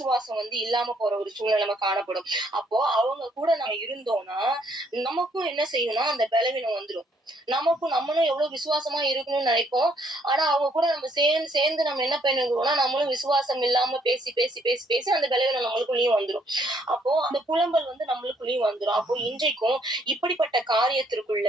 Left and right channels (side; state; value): both; normal; correlation 0.67